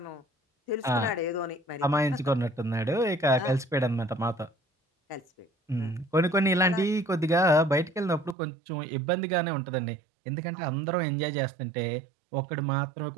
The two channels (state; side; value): drops out; left; at 8.3 s